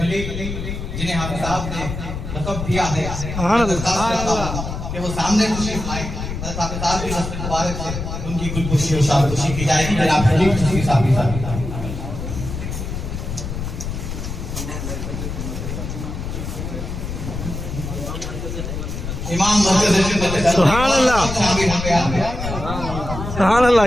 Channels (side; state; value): left; noise; rumble, 6 dB below the sound